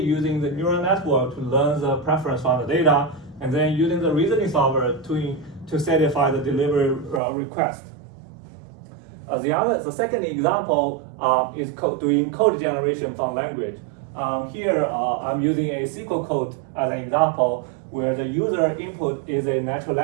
the neural network to learn the preference from the data, and then using the reasoning solver to satisfy the delivery request. The second example is doing code generation from language. Here I'm using a SQL code as an example, where the user input is a natural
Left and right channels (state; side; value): drops out; left; at 7.2 s